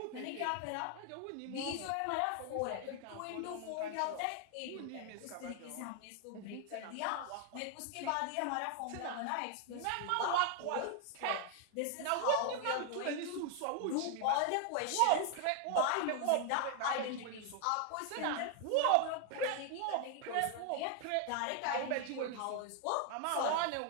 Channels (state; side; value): different; both; correlation 0.00